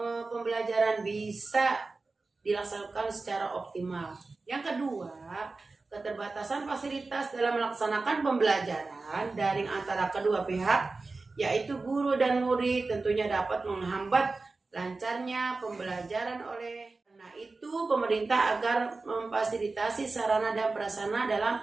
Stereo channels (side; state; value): left; quieter; 3.7 dB